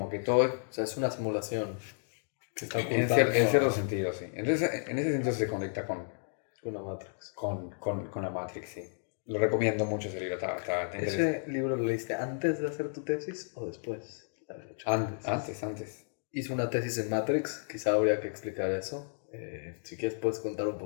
que todo es... O sea, es una simulación que está En cierto sentido, sí. Entonces, en ese sentido se conecta con una Matrix. Con la Matrix, sí. Lo recomiendo mucho ese libro, está interesante. ¿Ese libro lo leíste antes de hacer tu tesis o después? Antes. Hice una tesis en Matrix, quizá habría que explicar eso. Si quieres puedes contar un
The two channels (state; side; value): silent; right; digital silence